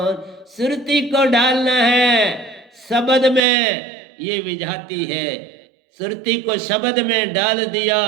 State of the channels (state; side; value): drops out; left; at 3.4 s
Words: सुरती को डालना है शब्द में, ये विजाती है। सुरती को शब्द में डाल दिया,